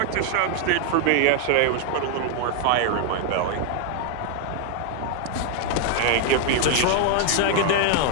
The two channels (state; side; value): different; both; correlation 0.00